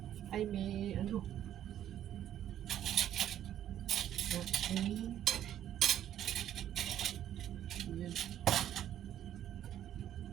ay may ano, okay. Yan.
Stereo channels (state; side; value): quieter; left; 11.1 dB